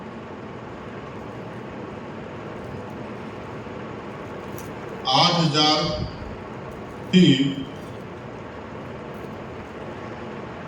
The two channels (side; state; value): both; identical; correlation 1.00